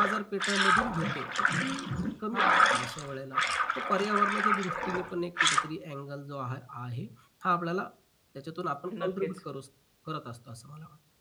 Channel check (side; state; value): both; identical; correlation 1.00